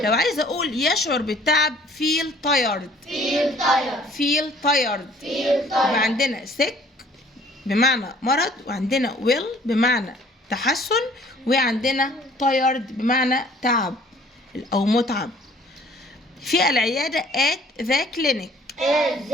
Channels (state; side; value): normal; both; correlation 0.55